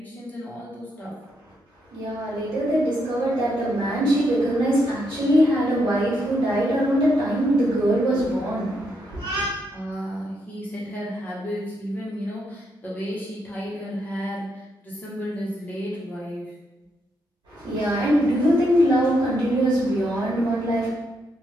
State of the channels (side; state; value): both; normal; correlation 0.78